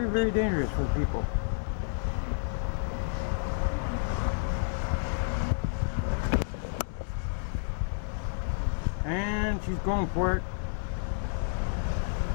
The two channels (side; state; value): right; silent; digital silence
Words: very dangerous for people. And she's going for it.